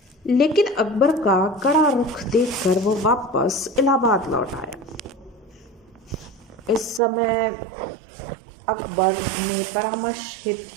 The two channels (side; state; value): left; drops out; at 7.0 s